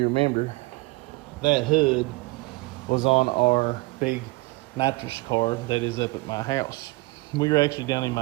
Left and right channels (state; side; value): quieter; left; 23.3 dB